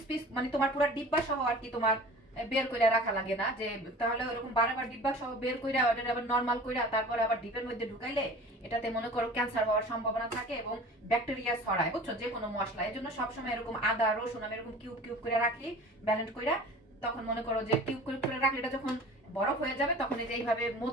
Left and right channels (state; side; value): normal; both; correlation 0.42